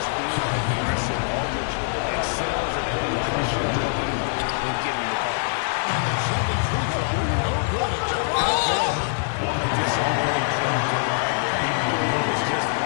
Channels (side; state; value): right; silent; digital silence